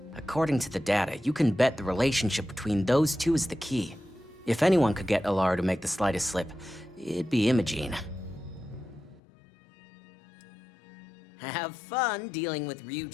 According to the data, you can bet the relationship between those two is the key. If anyone could get Alara to make the slightest slip, it'd be Imogene. Have fun dealing with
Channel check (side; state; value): right; drops out; at 9.2 s